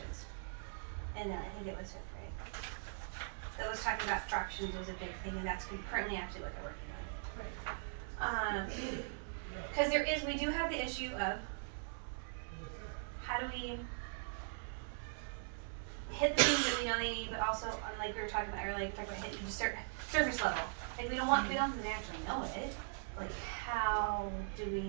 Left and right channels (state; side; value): silent; left; digital silence